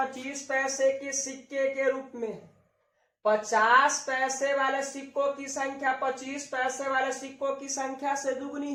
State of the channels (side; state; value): both; identical; correlation 1.00